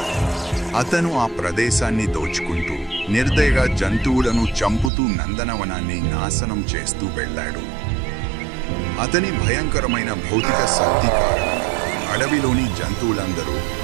అతను ఆ ప్రదేశాన్ని దోచుకుంటూ నిర్దయగా జంతువులను చంపుతూ నందనవనాన్ని నాశనం చేస్తూ వెళ్ళాడు. అతని భయంకరమైన భౌతిక శక్తి కారణంగా అడవిలోని జంతువులందరూ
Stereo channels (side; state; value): left; drops out; at 4.9 s